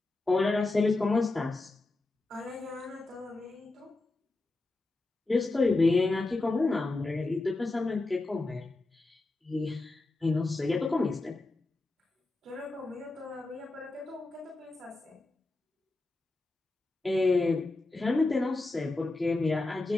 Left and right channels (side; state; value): right; quieter; 3.1 dB